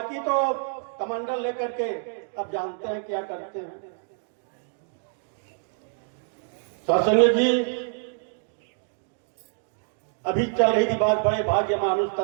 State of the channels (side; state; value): left; silent; digital silence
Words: तो कमंडल लेकर के अब जानते हैं क्या करते हैं। सत्संग जी अभी चल रही थी बात, बड़े भाग्य मानुष